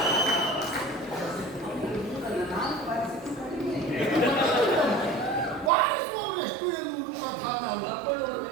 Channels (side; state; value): left; drops out; at 5.7 s